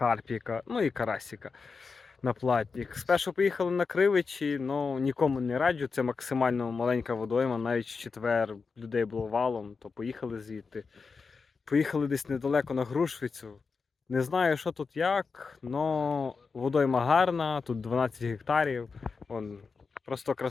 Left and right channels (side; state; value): right; quieter; 4.9 dB